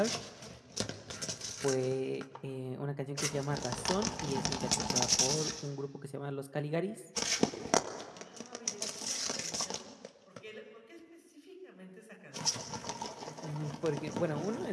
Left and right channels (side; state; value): both; identical; correlation 1.00